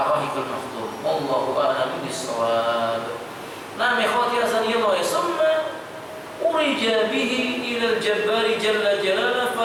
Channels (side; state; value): both; identical; correlation 1.00